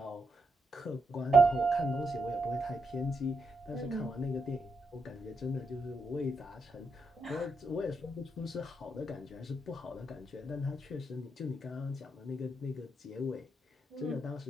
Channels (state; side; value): normal; both; correlation 0.82